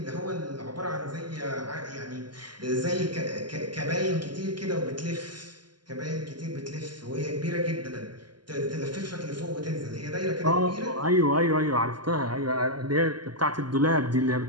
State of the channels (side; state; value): left; late; 0.71 ms